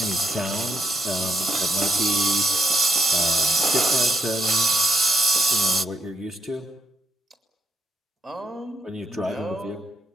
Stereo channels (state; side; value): normal; both; correlation 0.79